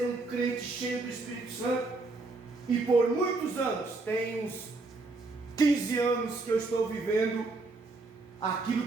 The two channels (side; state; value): left; quieter; 3.5 dB